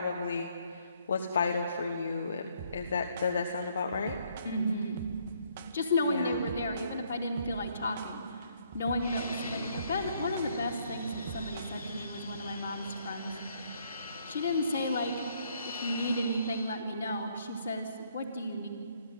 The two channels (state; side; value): inverted; both; correlation -0.68